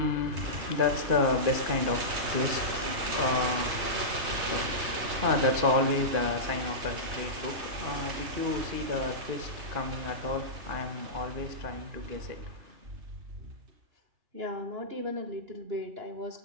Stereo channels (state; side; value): late; left; 2.5 ms